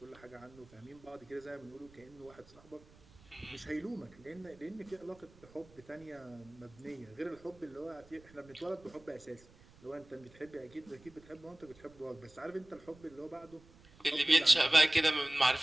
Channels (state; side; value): noise; right; rumble, 25 dB below the sound